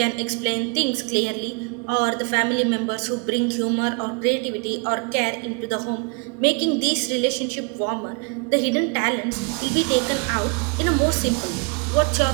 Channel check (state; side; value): quieter; left; 34.5 dB